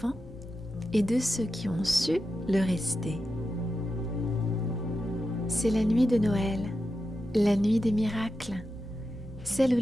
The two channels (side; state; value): both; normal; correlation 0.89